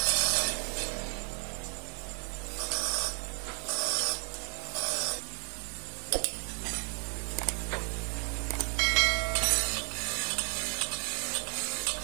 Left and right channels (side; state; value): left; quieter; 36.7 dB